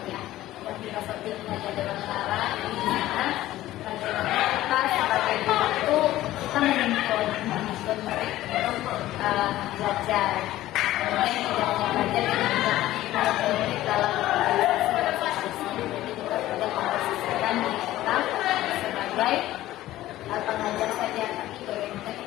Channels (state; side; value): quieter; right; 15.1 dB